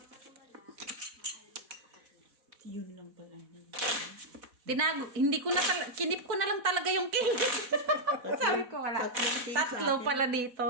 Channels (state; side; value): late; left; 4.1 ms